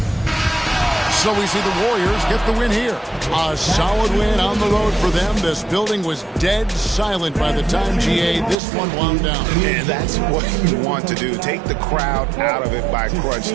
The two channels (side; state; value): left; drops out; at 8.6 s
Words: So we see the Warriors get the win here. A solid win on the road for them. This building was dead silent by the time, GA, this one wound down. And that's what you want to do. Take the crowd out of it by crunch